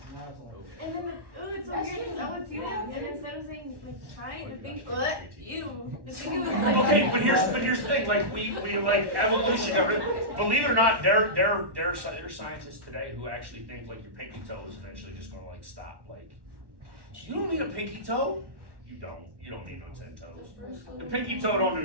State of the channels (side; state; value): left; late; 1.1 ms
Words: And then it's so weird because I would see them, and instead of saying like trying to think, you. Okay, but here's the thing. Like we like evolution. Believe it or not, there are scientists today who actually think like your pinky toe is eventually just gonna like stop. Like, you don't need a pinky toe. You don't need no 10 toes. The pinky toe don't